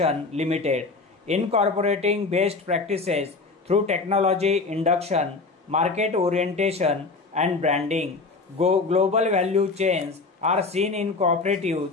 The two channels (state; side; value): quieter; right; 3.9 dB